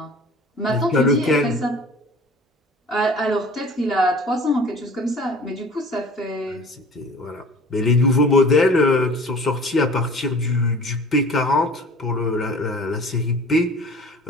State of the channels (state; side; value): normal; both; correlation 0.44